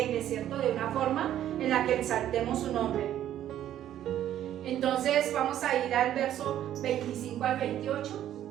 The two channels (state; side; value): quieter; left; 11.6 dB